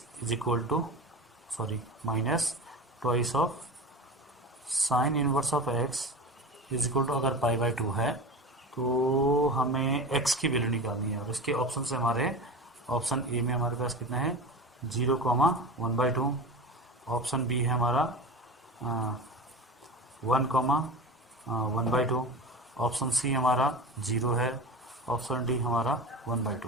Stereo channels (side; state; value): both; normal; correlation 0.30